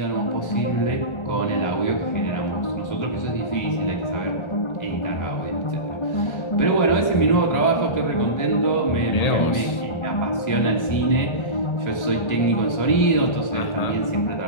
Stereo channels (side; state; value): right; late; 1.3 ms